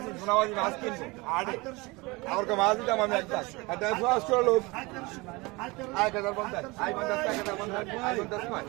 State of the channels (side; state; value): left; quieter; 24.4 dB